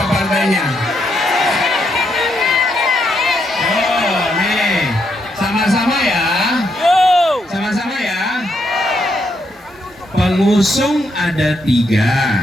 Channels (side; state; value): both; normal; correlation 0.78